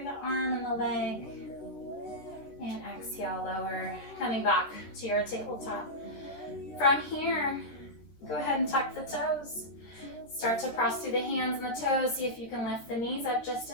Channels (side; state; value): right; late; 14 ms